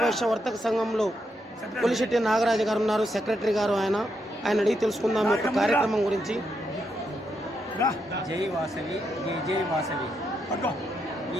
వర్తక సంఘంలో కొలిశెట్టి నాగరాజు గారు ఉన్నారు, సెక్రటరీ గారు. ఆయన అడిగి తెలుసుకుందాం యొక్క కార్యక్రమం గురించి. జై వాసవి, జై జై వాసవి.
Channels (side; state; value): both; normal; correlation 0.81